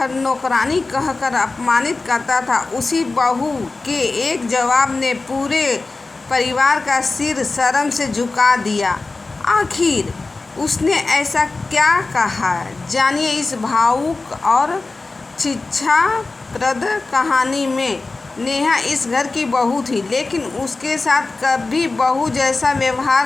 नौकरानी कहकर अपमानित करता था, उसी बहू के एक जवाब ने पूरे परिवार का सिर शर्म से झुका दिया। आखिर उसने ऐसा क्या कहा, जानिए इस भावुक और शिक्षाप्रद कहानी में। नेहा इस घर की बहू थी, लेकिन उसके साथ कभी बहू जैसा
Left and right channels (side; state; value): right; quieter; 3.5 dB